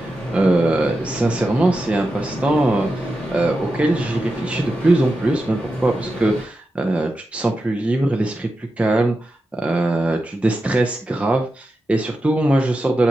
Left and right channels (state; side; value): normal; both; correlation 0.90